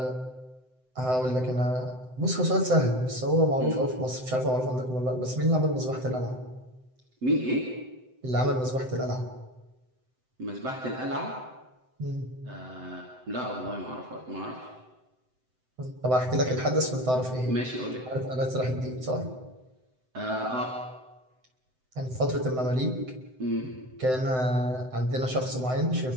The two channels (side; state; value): left; late; 7.8 ms